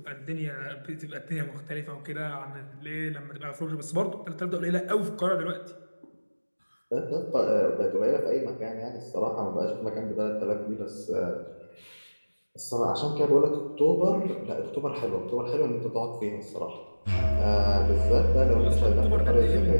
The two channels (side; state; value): both; inverted; correlation -1.00